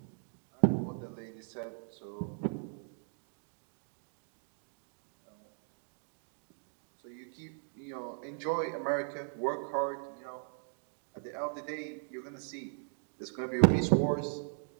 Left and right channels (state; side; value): silent; left; 53 dB below the other